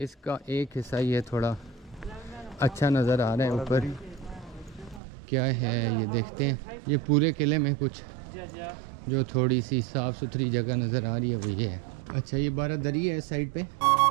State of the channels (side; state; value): left; drops out; at 5.0 s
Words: एक हिस्सा ये थोड़ा अच्छा नज़र आ रहा है ऊपर। क्या है ये देखते हैं। ये पूरे किले में कुछ जो थोड़ी सी साफ़ सुथरी जगह नज़र आ रही है वो ये है। अच्छा ये बारादरी है साइड पे।